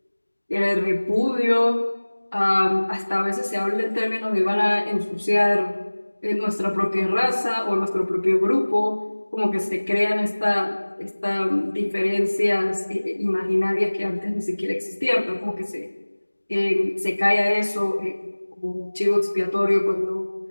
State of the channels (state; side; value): inverted; both; correlation -1.00